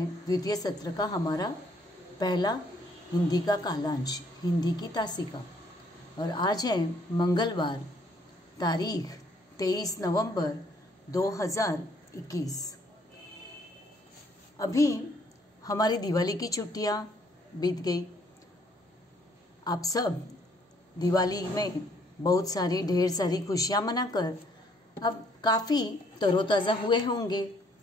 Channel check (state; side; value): normal; both; correlation 0.65